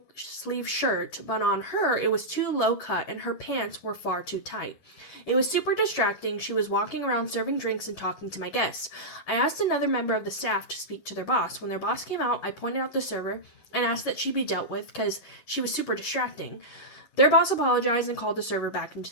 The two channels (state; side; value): late; right; 11 ms